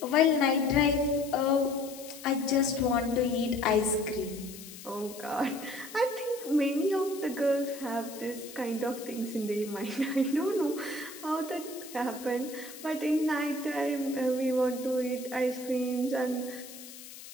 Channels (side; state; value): left; noise; hiss, 15 dB below the sound